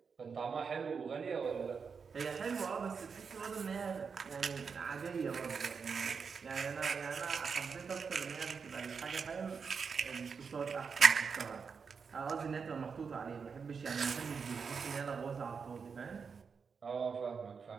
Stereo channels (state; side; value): quieter; left; 5.7 dB